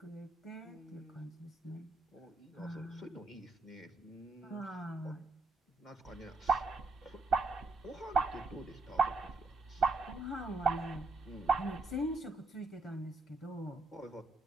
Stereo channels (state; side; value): quieter; left; 3.3 dB